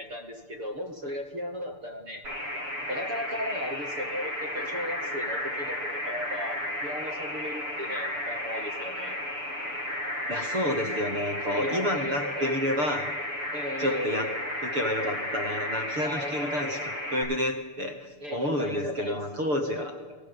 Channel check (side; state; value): left; late; 6.8 ms